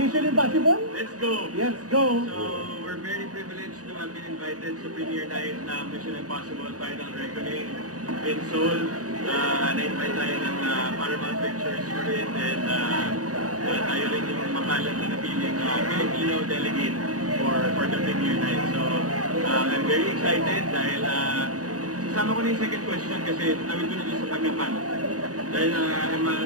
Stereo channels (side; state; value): left; late; 0.67 ms